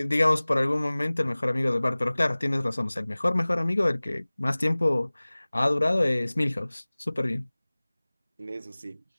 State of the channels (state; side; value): inverted; both; correlation -1.00